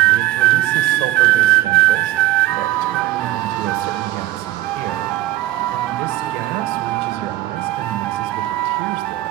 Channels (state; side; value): quieter; left; 15.7 dB